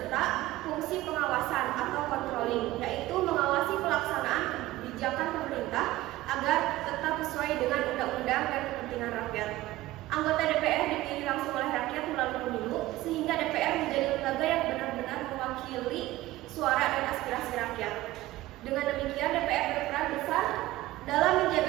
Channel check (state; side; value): quieter; left; 17.0 dB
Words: fungsi pengawasan atau controlling, yaitu mengawasi pelaksanaan kebijakan pemerintah agar tetap sesuai dengan undang-undang dan kepentingan rakyat. Anggota DPR dipilih langsung oleh rakyat melalui pemilu, sehingga DPR menjadi lembaga yang benar-benar mewakili suara dan aspirasi rakyat. Dengan demikian, DPR berperan besar dalam